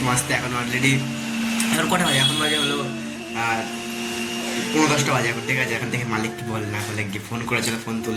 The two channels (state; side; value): identical; both; correlation 1.00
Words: আসতে। এখন অলরেডি এখন কটা বাজে? এখন বাজে হলো 9:10 বাজে এখন। ঠিক আছে, এখন থেকে মালিক কি বল না বলে গিয়ে ফোন করেছিল, ফোন